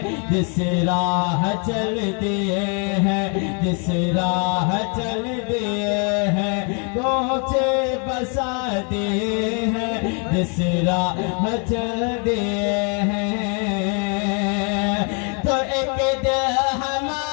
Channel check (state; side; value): quieter; right; 38.5 dB